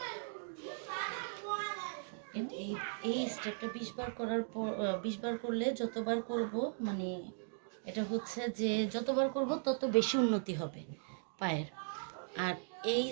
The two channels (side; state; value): left; silent; digital silence